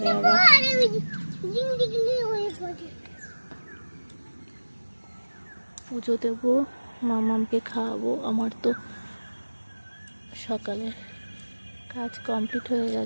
আবার পুজো দেবো, মামামকে খাওয়াবো। আমার তো সকালে কাজ কমপ্লিট হয়ে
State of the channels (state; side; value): inverted; both; correlation -1.00